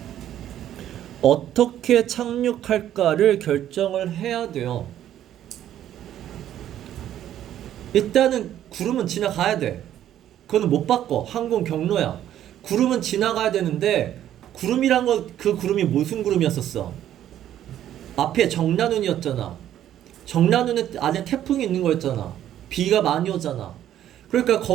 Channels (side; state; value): left; quieter; 11.5 dB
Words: 어떻게 착륙할까를 결정을 해야 돼요. 일단은 구름은 지나가야 돼. 그거는 못 바꿔. 항공 경로야. 구름은 지나가야 되는데 구름이란 거 그 구름이 무슨 구름이었었어? 앞에 정난운이었잖아. 정난운에 안에 태풍이 있는 거였잖아. 비가 많이 오잖아. 그러니까